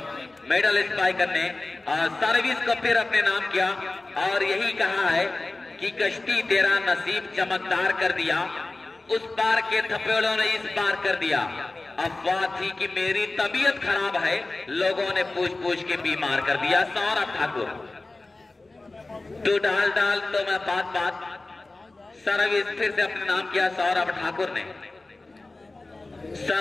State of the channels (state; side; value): quieter; right; 3.1 dB